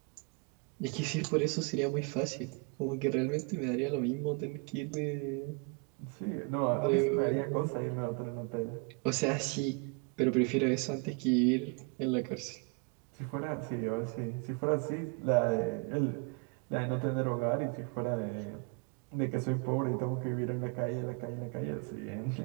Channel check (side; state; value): left; quieter; 31.0 dB